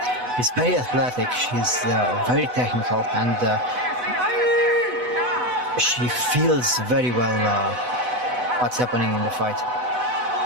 very athletic. She's very technical, and she feels very well what's happening in the fight.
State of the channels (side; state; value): left; late; 4.1 ms